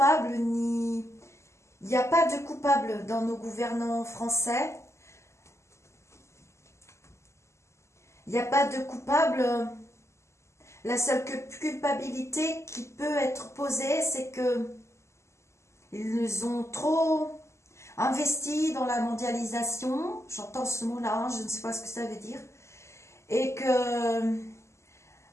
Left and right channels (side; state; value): right; late; 0.13 ms